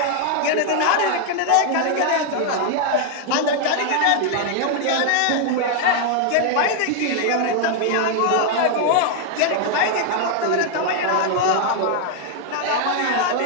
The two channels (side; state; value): both; different; correlation 0.00